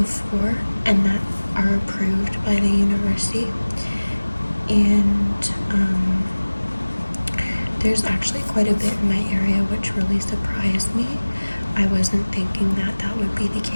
and that are approved by the university. And there's actually quite a bit in my area, which really surprised me. I wasn't thinking that that would be the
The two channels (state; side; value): inverted; both; correlation -1.00